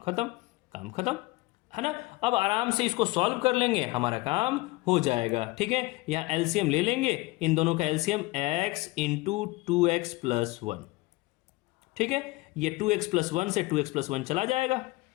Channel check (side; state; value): right; quieter; 21.7 dB